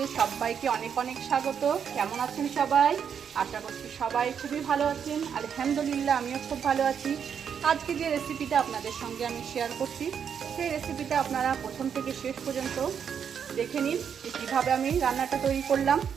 সবাইকে অনেক অনেক স্বাগত। কেমন আছেন সবাই? আশা করছি সবাই খুবই ভালো আছেন। আলহামদুলিল্লাহ, আমিও খুব ভালো আছি। আজকে যে রেসিপিটা আপনাদের সঙ্গে আমি শেয়ার করছি, সেই রেসিপিটা আপনারা প্রথম থেকে শেষ পর্যন্ত দেখে নিন কীভাবে আমি রান্নাটা তৈরি করলাম।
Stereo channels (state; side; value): quieter; left; 7.6 dB